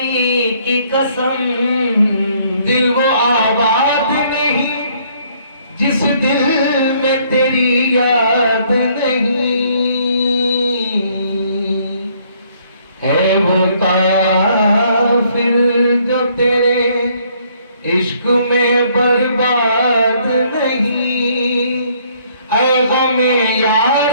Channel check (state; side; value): inverted; both; correlation -0.64